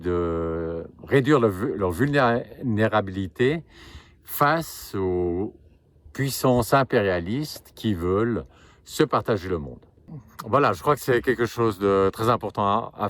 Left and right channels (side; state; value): both; identical; correlation 1.00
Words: réduire leur vulnérabilité face aux puissances impérialistes qui veulent se partager le monde. Voilà, je crois que c'est quelque chose de très important à